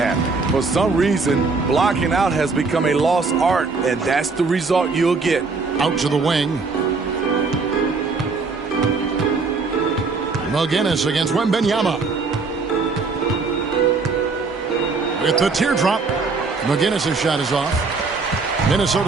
For some reason, blocking out has become a lost art, and that's the result you'll get. Out to the wing. McGinnis against Wembanyama. With the teardrop. McGinnis' shot is off.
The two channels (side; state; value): left; quieter; 4.3 dB